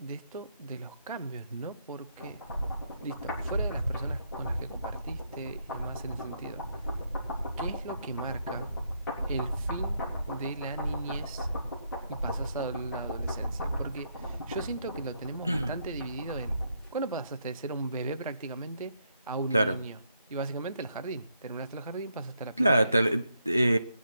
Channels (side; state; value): both; inverted; correlation -0.77